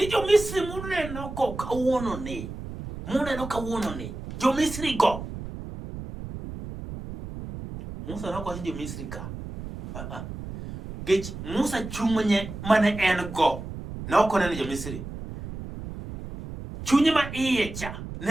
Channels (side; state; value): right; noise; rumble, 10 dB below the sound